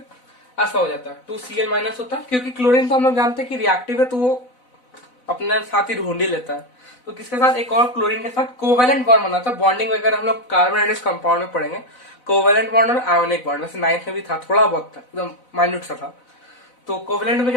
ऐसा हो जाता है, 2Cl माइनस होता है, क्योंकि क्लोरीन तो हम लोग जानते हैं कि रिएक्टिव है, तो वो अपने साथ ही ढूंढ ही लेता है। तो किसके साथ, एक और क्लोरीन के साथ कोवेलेंट बॉन्ड बनाता है। बॉन्डिंग वगैरह हम लोग कार्बन कंपाउंड में पढ़ेंगे, कोवेलेंट बॉन्ड और आयोनिक बॉन्ड, वैसे 9th में भी था, थोड़ा बहुत था, एकदम माइन्यूट सा था। तो कोवेलेंट में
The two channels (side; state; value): right; late; 4.0 ms